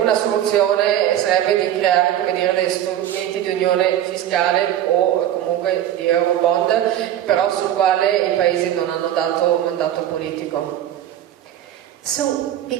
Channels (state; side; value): quieter; left; 11.6 dB